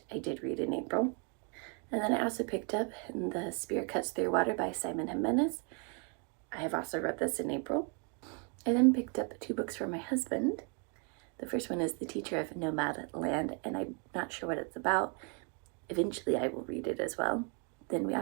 I did read in April. And then I also picked up The Spear Cuts Through Water by Simon Jimenez. I have also read this in April. I then picked up 2 books for my husband. The first one is The Teacher of Nomad Land, and I'm not sure what it's about. Eventually I will read it as well. Then we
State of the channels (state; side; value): quieter; left; 37.1 dB